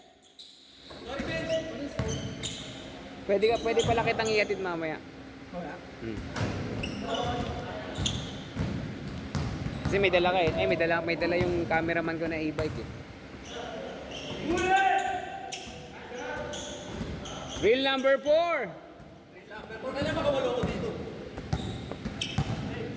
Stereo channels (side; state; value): both; identical; correlation 1.00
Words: Pwede pala kitang iatid mamaya. Kasi may dala ka eh. Ay, may dala yung cameraman ko na e-bike eh. Reel number 4. Pero kailan makawalo ko dito?